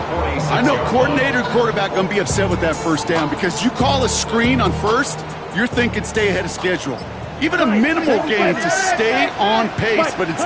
I know coordinator and quarterback going to be upset with that 1st down because you call a screen on 1st, you're thinking stay ahead of schedule. Even a minimal gain to stay on pace, but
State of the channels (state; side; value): identical; both; correlation 1.00